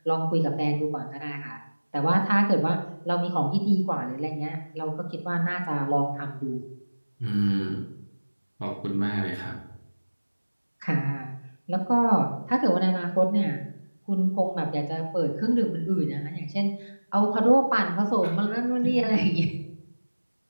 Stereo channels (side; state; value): both; inverted; correlation -1.00